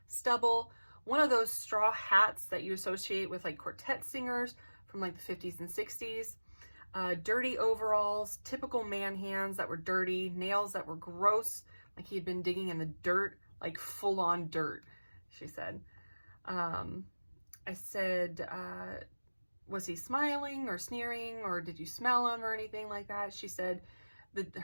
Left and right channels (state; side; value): inverted; both; correlation -1.00